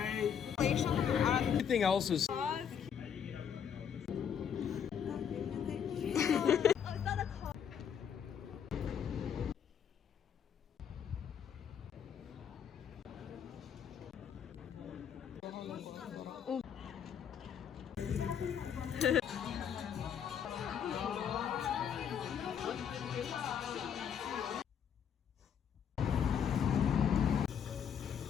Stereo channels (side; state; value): right; quieter; 8.0 dB